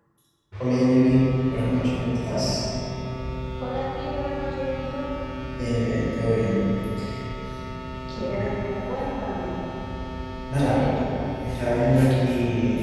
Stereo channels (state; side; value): identical; both; correlation 1.00